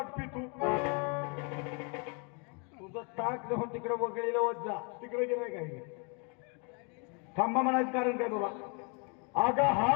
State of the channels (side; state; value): right; quieter; 35.4 dB